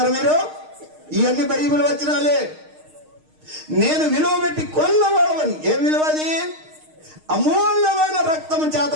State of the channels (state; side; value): late; left; 6.5 ms